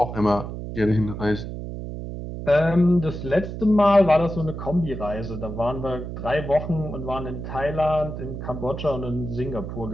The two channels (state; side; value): noise; right; hum, 7 dB below the sound